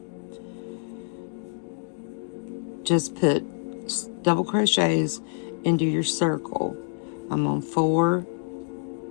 Just put double crochets into your circle. I'm on 4,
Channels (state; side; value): silent; right; digital silence